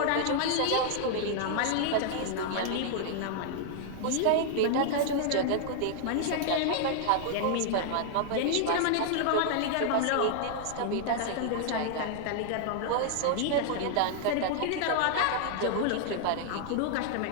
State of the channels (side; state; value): both; different; correlation -0.01